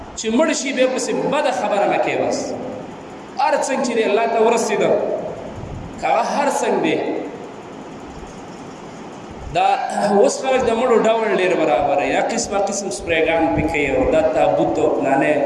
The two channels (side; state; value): both; identical; correlation 1.00